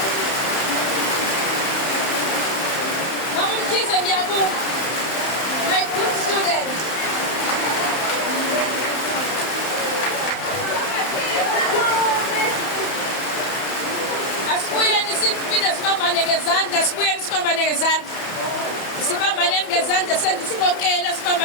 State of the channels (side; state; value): right; late; 31 ms